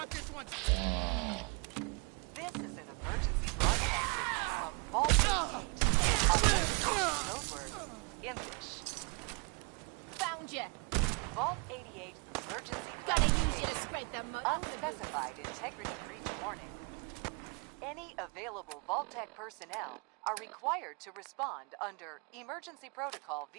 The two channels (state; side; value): quieter; left; 33.6 dB